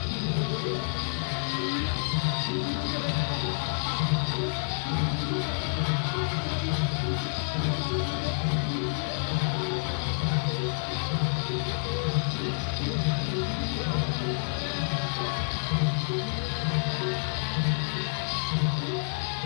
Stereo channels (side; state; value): right; silent; digital silence